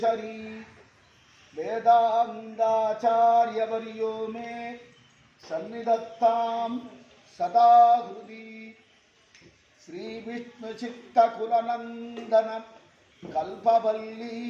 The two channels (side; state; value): both; identical; correlation 1.00